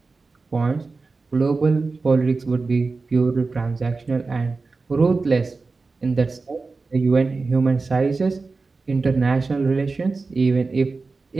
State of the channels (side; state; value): left; quieter; 4.0 dB